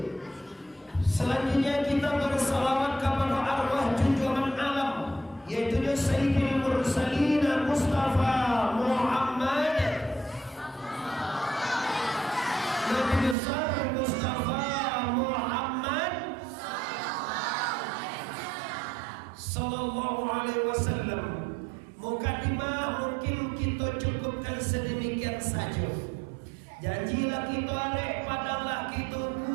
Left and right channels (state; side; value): drops out; left; at 13.4 s